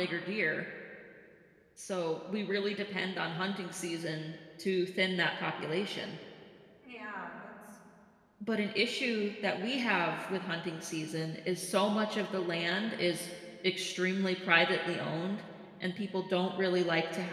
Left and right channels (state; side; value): identical; both; correlation 1.00